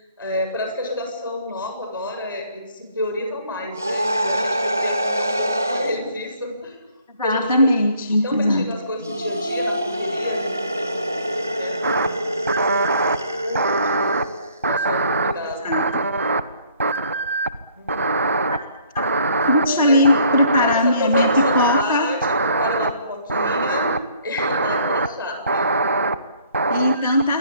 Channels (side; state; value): both; inverted; correlation -0.61